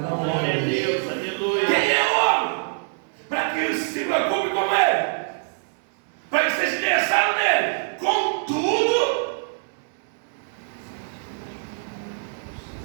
Não, glória a Deus, aleluia. Quem é o homem? Para que ele se preocupe com ele, para que seja interessado nele. Contudo,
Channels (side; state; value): left; silent; 62 dB below the other